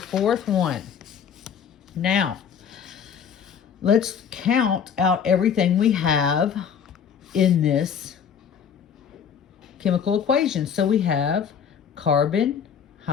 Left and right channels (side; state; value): right; quieter; 7.5 dB